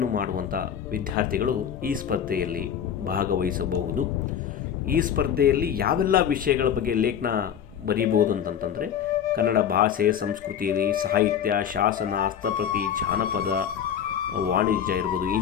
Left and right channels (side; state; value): right; quieter; 8.8 dB